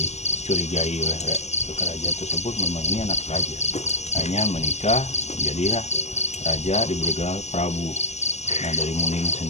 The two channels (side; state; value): right; late; 0.32 ms